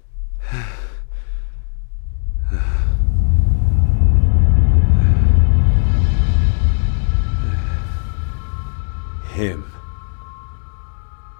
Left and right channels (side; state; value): right; silent; digital silence